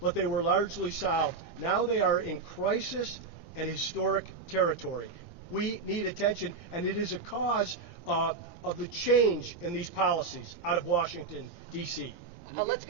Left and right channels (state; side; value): quieter; left; 4.4 dB